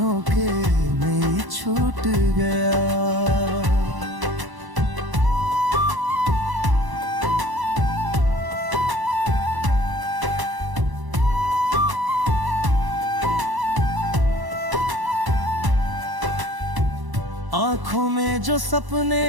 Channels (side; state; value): left; late; 1.0 ms